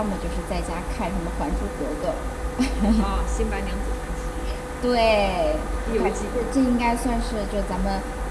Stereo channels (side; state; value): both; identical; correlation 1.00